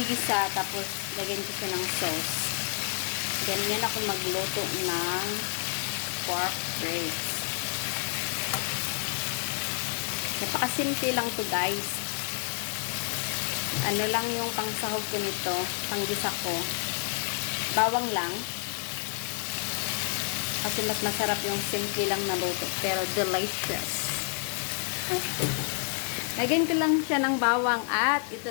tapos lagyan ko siya ng sauce. Ganyan ako magluto ng pork ribs. Napakasimple lang to guys. Ano lang yung pangsahog ko nito, panggisa ko. Bawang lang. Kasi mas masarap yung simple lang na luto, pero delicious. Lagyan ko lang siya ng bawang at ito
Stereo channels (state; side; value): silent; right; 58 dB below the other